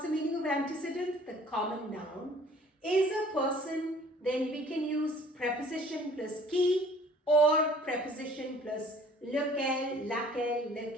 the meaning of antecedent? The common noun, is a person, then we can use preposition plus qui or preposition plus lequel, laquelle,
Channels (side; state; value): both; normal; correlation 0.53